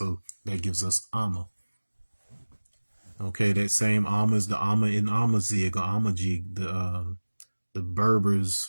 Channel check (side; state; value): both; inverted; correlation -1.00